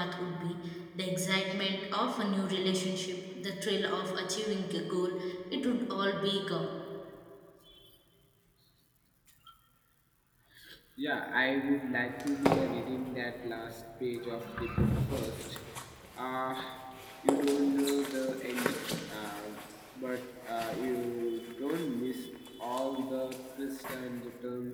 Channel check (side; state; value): both; identical; correlation 1.00